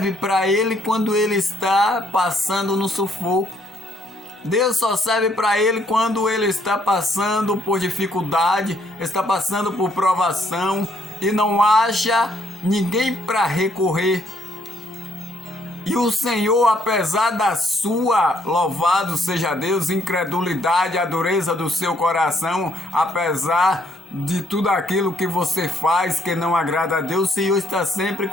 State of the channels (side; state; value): both; normal; correlation 0.68